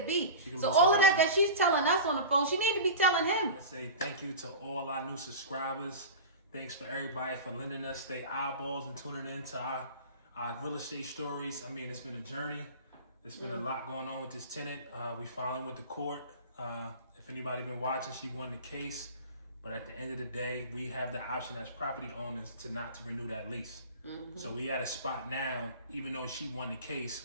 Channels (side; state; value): both; inverted; correlation -0.32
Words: So all of that she's telling us on the phone, she need to be telling him. I say thank you to all our new subscribers. Thanks for everybody for lending us their eyeballs and tuning in to our real estate stories. I mean, it's been a journey. There's been a lot going on with this tenant. We finally went to court. If anybody been watching, she won the case. But at the end of the day, we have the option as property owners to renew that lease. So we at a spot now, even though she won the